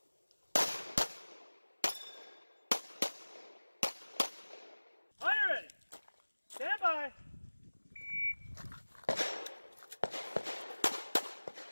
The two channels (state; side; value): inverted; both; correlation -1.00